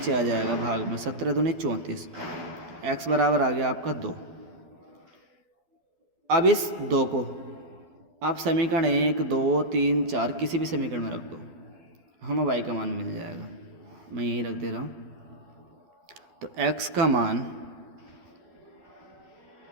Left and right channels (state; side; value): late; left; 12 ms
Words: आ जाएगा भाग में, 17 दूनी 34, x बराबर आ गया आपका 2। अब इस 2 को आप समीकरण 1 2 3 4 किसी भी समीकरण में रख दो, हमें y का मान मिल जाएगा। मैं यहीं रख दे रहा हूँ। तो x का मान